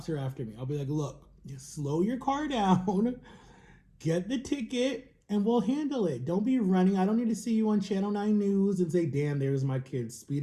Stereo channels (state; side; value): identical; both; correlation 1.00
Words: are after me. I'll be like, look, slow your car down, get the ticket, and we'll handle it. Don't be running. I don't need to see you on Channel 9 News and say, damn, there's my kid